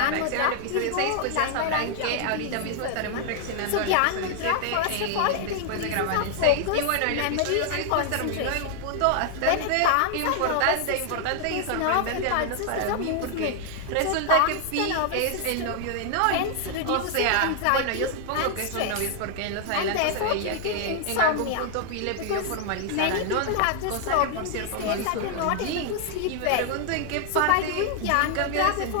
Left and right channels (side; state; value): both; different; correlation 0.00